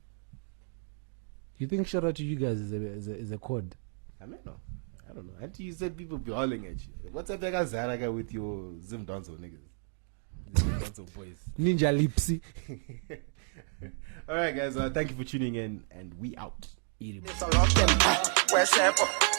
You think shout out to you guys is a code? I don't know. Until you said people be hauling at you. What's up, that Zaraga with your Zim Donzo niggas? Zim Donzo boys. Ninja Lipsy. Alright, guys. Thank you for tuning in, and we out.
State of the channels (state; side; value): silent; left; 56 dB below the other